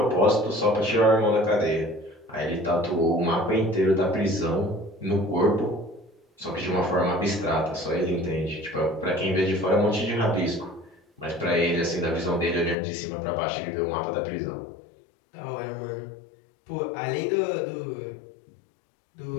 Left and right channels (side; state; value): right; drops out; at 12.8 s